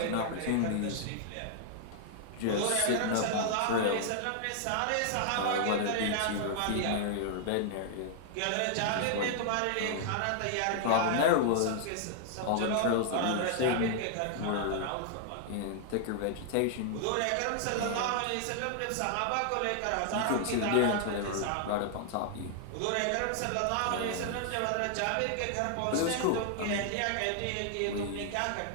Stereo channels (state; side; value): different; both; correlation -0.01